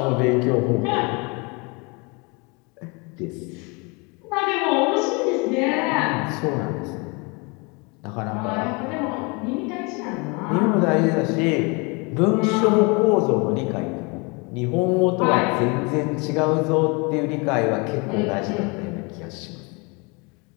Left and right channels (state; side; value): quieter; right; 29.8 dB